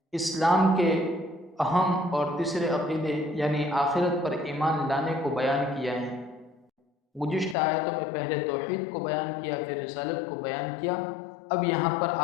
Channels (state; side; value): drops out; right; at 7.6 s